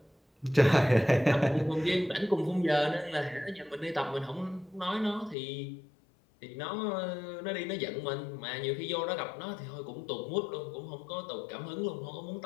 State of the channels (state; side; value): drops out; right; at 5.4 s